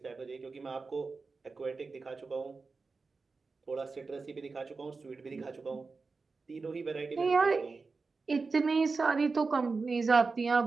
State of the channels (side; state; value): left; quieter; 4.3 dB